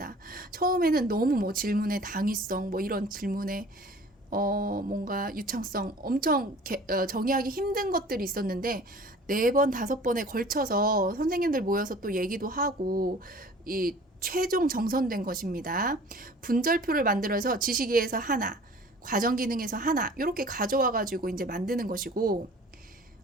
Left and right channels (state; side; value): normal; both; correlation 0.47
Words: 처음에는 너무 질문의 당위성, 이런 질문의 뭔가 유창성 엄청 정의하기 힘든 것들이 있었는데, 4번, 5번에 걸쳐서 선생님들 모여서 또 얘기도 하고 이 최종 정선된 것입니다. 분절표를 만들어서 지식이해에서 하나, 과정 기능에서 하나, 이렇게 가져와 가지고 이제 만드는 것이고,